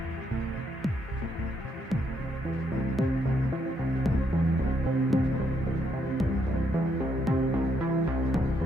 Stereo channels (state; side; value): normal; both; correlation 0.75